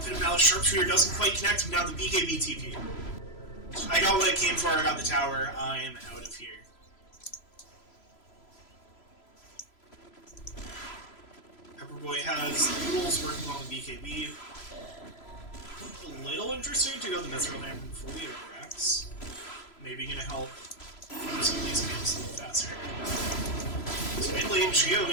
Malice Sharpshooter doesn't quite connect, and now the BKB TP. I got what I came for, I got the tower, I am out of here. Pepperboy has the Noodles working on the BKB. A little interesting to go the Mithril Hammer before the overacts. Maybe gonna help run some of these games a little faster. So mid lane, Geo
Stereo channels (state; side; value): late; right; 3.0 ms